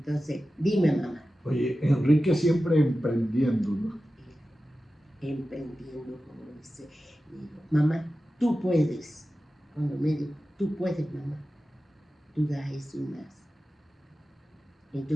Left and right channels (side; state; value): both; normal; correlation 0.94